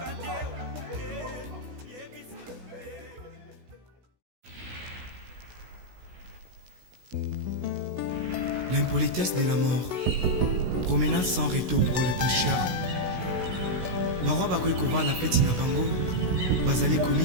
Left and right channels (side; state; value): left; late; 16 ms